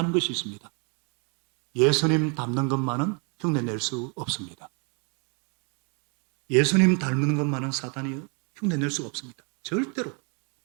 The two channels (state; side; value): quieter; left; 35.8 dB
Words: 것이 있습니다. 예수님 닮는 것만은 흉내낼 수 없습니다. 예수님 닮는 것만은 사탄이 흉내낼 수가 없습니다. 절대로.